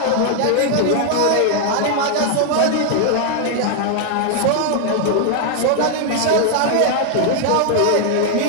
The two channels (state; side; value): different; both; correlation 0.00